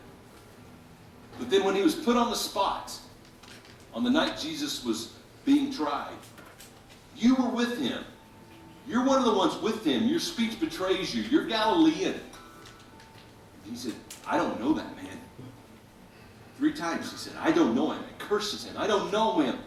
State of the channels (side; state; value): both; identical; correlation 1.00